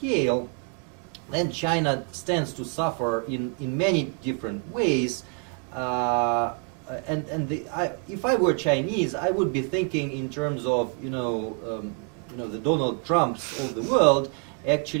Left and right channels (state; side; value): quieter; left; 38.9 dB